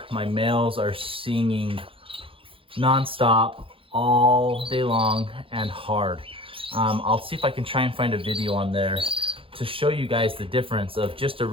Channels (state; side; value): late; left; 0.26 ms